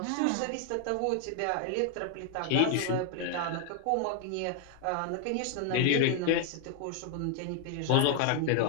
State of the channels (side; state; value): both; different; correlation 0.00